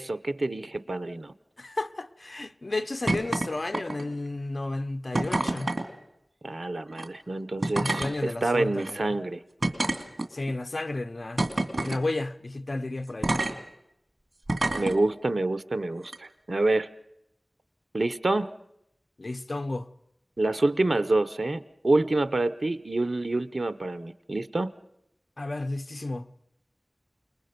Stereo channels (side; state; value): both; normal; correlation 0.97